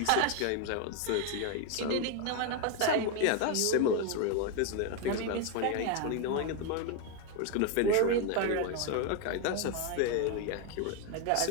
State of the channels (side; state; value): both; different; correlation 0.01